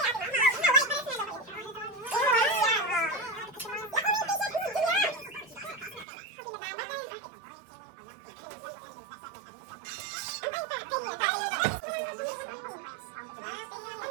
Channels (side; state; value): left; drops out; at 6.1 s